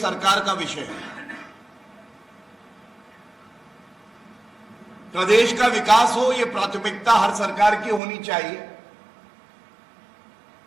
सरकार का विषय है। प्रदेश का विकास हो, यह प्राथमिकता हर सरकार की होनी चाहिए,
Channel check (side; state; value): left; drops out; at 8.0 s